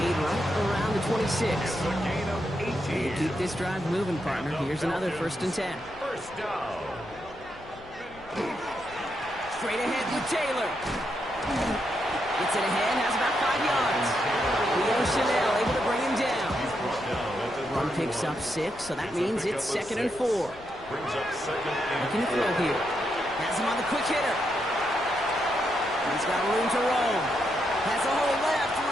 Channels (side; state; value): left; noise; rumble, 22 dB below the sound